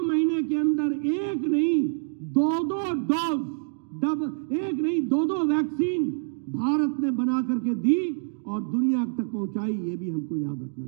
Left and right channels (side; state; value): left; silent; digital silence